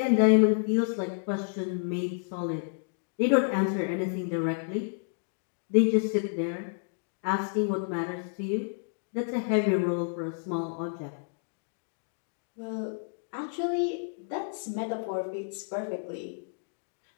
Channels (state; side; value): silent; right; digital silence